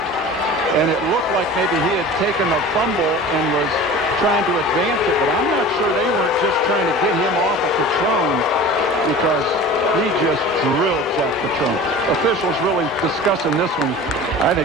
and it looked like maybe he had taken a fumble and was trying to advance it, but I'm not sure they weren't just trying to get him off of Catrone, because he just drilled Zach Catrone. Officials really discussing this one. I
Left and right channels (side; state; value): both; normal; correlation 0.38